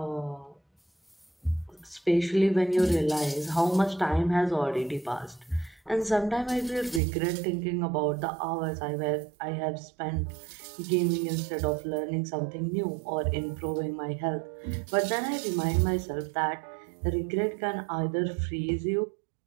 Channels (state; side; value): drops out; left; at 7.0 s